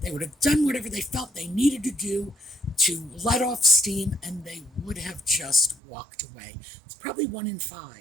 would have done whatever they felt they needed to do to let off steam, and they would have just walked away. It's probably 1 in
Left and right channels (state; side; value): drops out; left; at 5.8 s